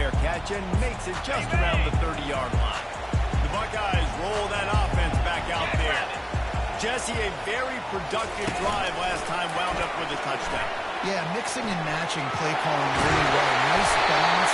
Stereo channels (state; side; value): identical; both; correlation 1.00